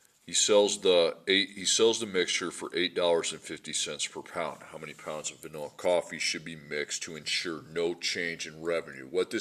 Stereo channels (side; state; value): both; identical; correlation 1.00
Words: He sells the mixture for $8.50 per pound. How many pounds of vanilla coffee should be mixed to ensure no change in revenue? What